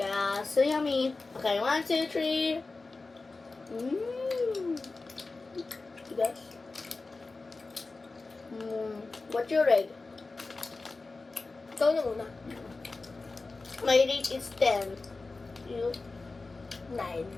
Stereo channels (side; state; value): right; quieter; 3.7 dB